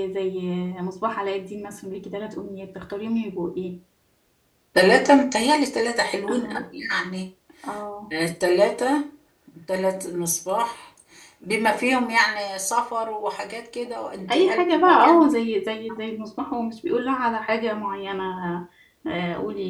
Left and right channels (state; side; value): identical; both; correlation 1.00